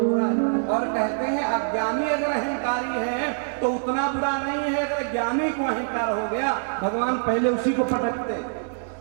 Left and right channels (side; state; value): left; silent; digital silence